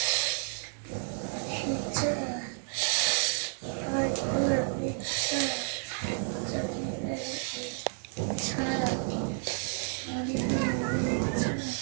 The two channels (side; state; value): left; silent; 57 dB below the other